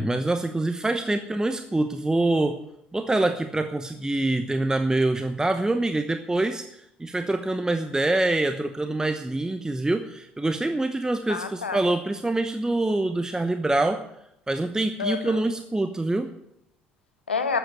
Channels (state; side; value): normal; both; correlation 0.88